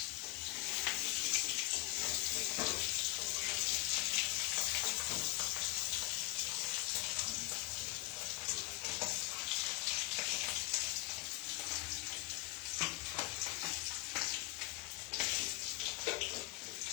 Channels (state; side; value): quieter; right; 21.6 dB